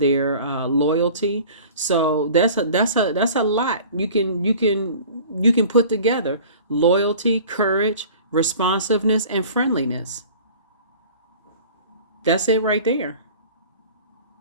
loyalty. So that's a lot. You can put together loyalty, courage, responsiveness, and friendliness. That's it right there.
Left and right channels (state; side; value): inverted; both; correlation -0.44